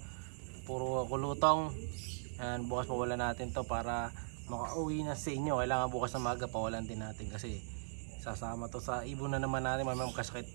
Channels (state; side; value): silent; left; digital silence